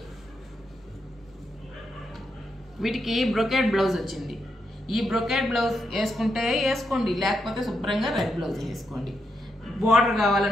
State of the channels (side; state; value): both; normal; correlation 0.83